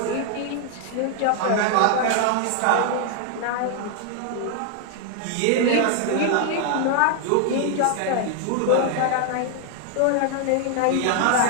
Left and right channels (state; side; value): different; both; correlation 0.00